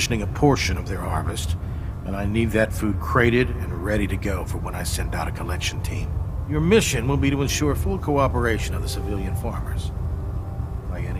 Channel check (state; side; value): identical; both; correlation 1.00